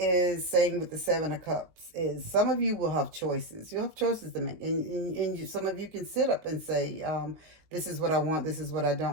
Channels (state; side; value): late; left; 19 ms